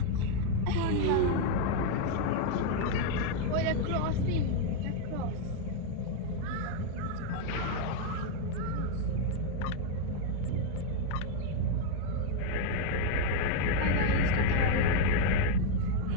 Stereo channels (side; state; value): both; different; correlation 0.01